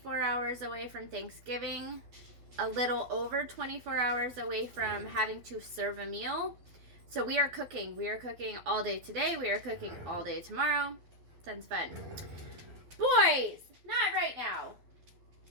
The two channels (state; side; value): late; left; 12 ms